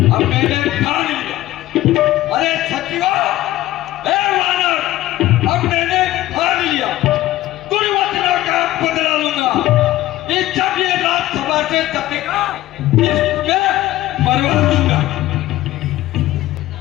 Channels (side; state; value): right; quieter; 15.6 dB